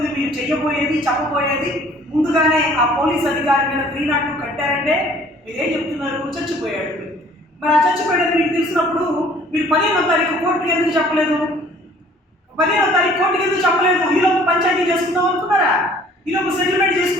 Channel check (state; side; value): normal; both; correlation 0.55